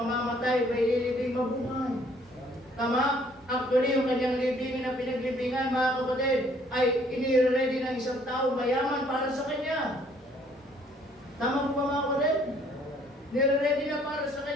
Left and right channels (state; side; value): normal; both; correlation 0.62